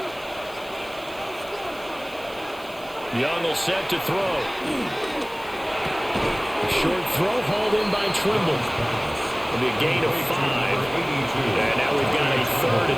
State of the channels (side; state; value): right; noise; hiss, 22 dB below the sound